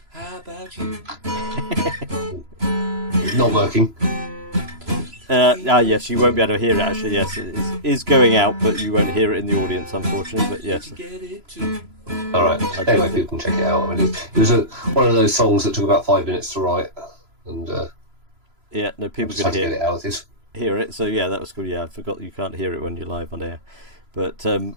How about you? Not working. Yes, you won't be able to hear it actually. Yes, it is going out, but you won't hear it in the audience, unfortunately. But yes. All right. Anyway, people can check it out. I mean, it was one of those songs that took about 5 minutes to write, and people can hear it out. Hear it. So yeah, that was cool. Yeah, I forgot you can't hear it when you're live on air. But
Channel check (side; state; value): left; late; 3.0 ms